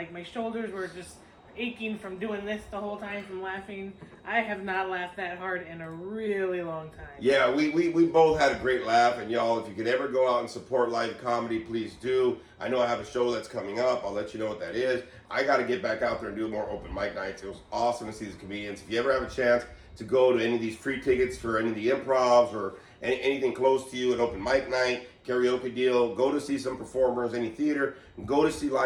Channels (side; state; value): both; identical; correlation 1.00